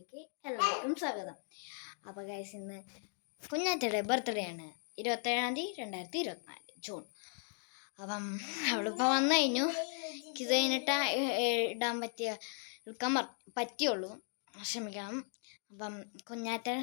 എല്ലാവർക്കും സ്വാഗതം. അപ്പോൾ ഗൈസ്, ഇന്ന് കുഞ്ഞാറ്റയുടെ ബർത്ത്ഡേ ആണ്, 27/2024 ജൂൺ. അപ്പം അവളിപ്പോൾ വന്നു കഴിഞ്ഞു. ഇത് കഴിഞ്ഞിട്ട് എടുക്കാൻ പറ്റിയുള്ളൂ, ക്ഷമിക്കണം. അപ്പം കുഞ്ഞാറ്റ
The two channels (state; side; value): silent; right; 53 dB below the other